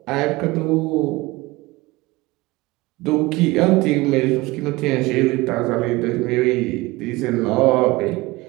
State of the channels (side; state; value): left; quieter; 21.3 dB